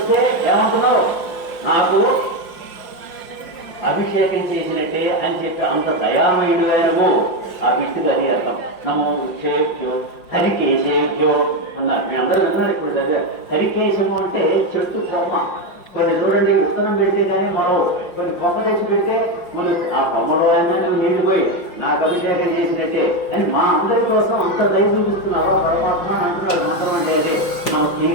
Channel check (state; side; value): late; right; 5.3 ms